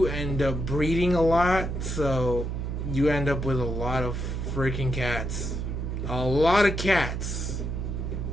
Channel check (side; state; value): right; noise; hum, 3 dB below the sound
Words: end up breeding a lot, so you end up with a lot of freaking cats. A lot of cats.